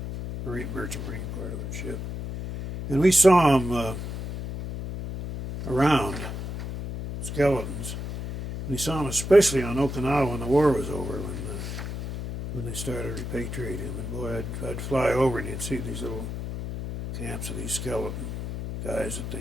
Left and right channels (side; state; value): left; noise; hum, 6 dB below the sound